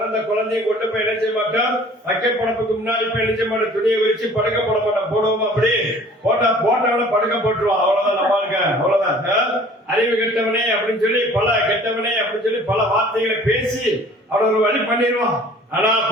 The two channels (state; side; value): normal; both; correlation 0.50